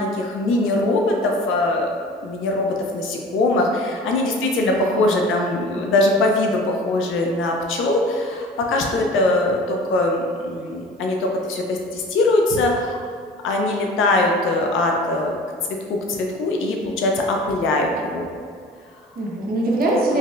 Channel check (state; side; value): normal; both; correlation 0.42